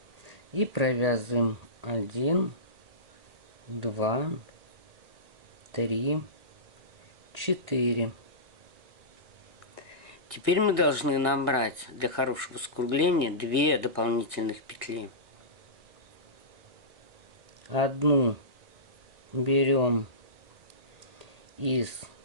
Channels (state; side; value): late; left; 1.7 ms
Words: И провязываем 1, 2, 3, 4. Теперь мы должны набрать для хорошего скругления 2 дополнительных петли. Одну берем из